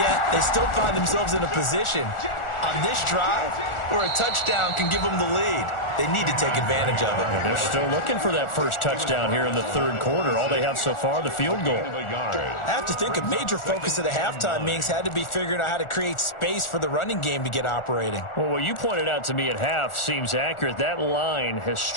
they still find themselves in a position on this drive where a touchdown can give them the lead. They need to take advantage of it. And they're still looking for that first touchdown here in the third quarter. All they have so far, the field goal. I have to think a major focus of the halftime meetings had to be figuring out how to create space for the running game to get operating. Well, what you pointed out to me at half seems accurate. That line has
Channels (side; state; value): right; late; 1.4 ms